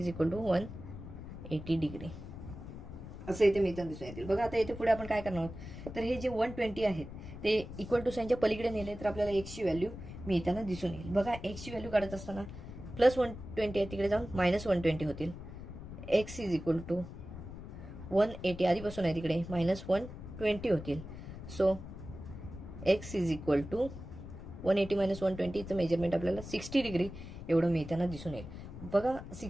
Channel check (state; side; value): noise; left; rumble, 11 dB below the sound